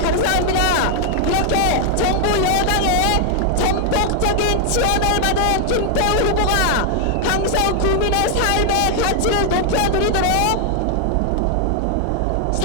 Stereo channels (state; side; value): different; both; correlation 0.00